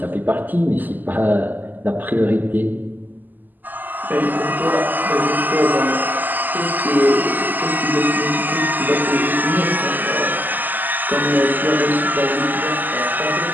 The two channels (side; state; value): left; late; 0.087 ms